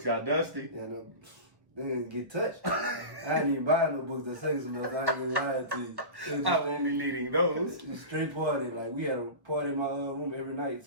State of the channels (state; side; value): late; left; 1.1 ms